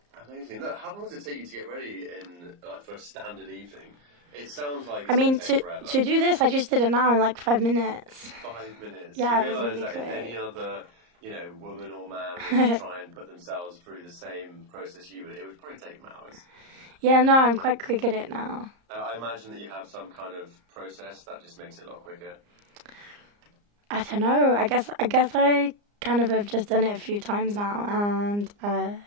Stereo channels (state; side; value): late; left; 34 ms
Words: Amazing. Look, how long does it take you to get ready for a standard evening? It sounds like it's I mean, going to take forever. to do this, I just did it now in like 5 minutes. 5 minutes. Yeah, you it was realise really that quick. if any other, woman or man was to try and put themselves through the same process you would, it would probably take them hours. Yeah, no, I'm quite quick at it now. I imagine that you have some kind of process that just makes it a lot quicker. I don't know. I guess I kind of have just done it a few times now, and